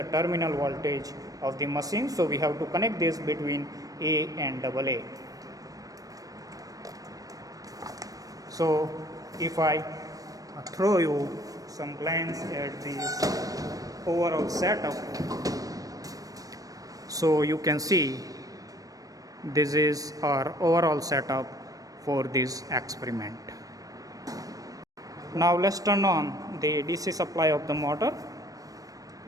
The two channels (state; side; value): late; left; 0.17 ms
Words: terminal voltage of the machine. So we have to connect this between A and AA. So if I throw you some glance at this overall setup, so you can see this is our overall setup for this experiment. Now let's turn on the DC supply of the motor.